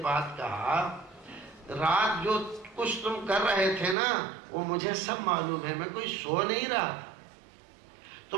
بعد کہا رات جو کچھ تم کر رہے تھے نا وہ مجھے سب معلوم ہے، میں کوئی سو نہیں رہا.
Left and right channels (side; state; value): left; drops out; at 4.0 s